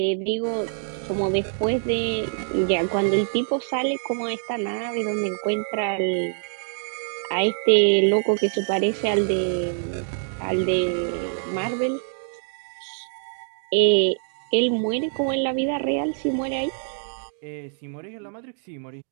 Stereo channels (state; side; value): silent; left; digital silence